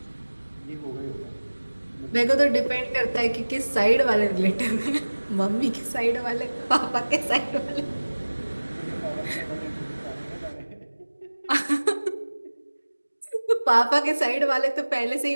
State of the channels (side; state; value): both; inverted; correlation -1.00